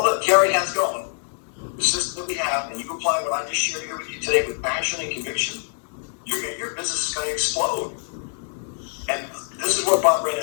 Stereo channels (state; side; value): silent; right; digital silence